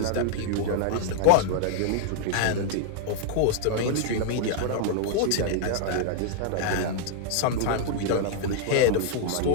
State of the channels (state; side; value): different; both; correlation 0.00